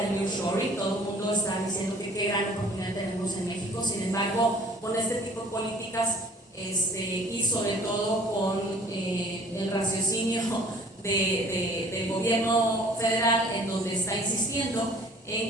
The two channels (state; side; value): normal; both; correlation 0.52